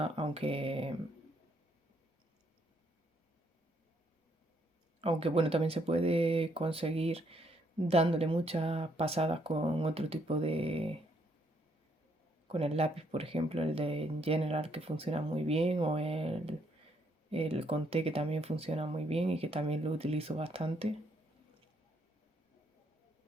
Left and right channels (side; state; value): both; normal; correlation 0.71